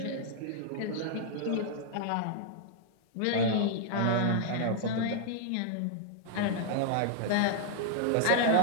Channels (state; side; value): different; both; correlation -0.01